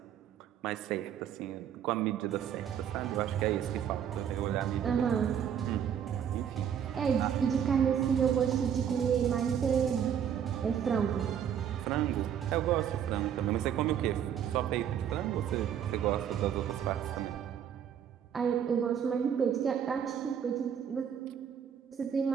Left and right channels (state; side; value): quieter; left; 8.8 dB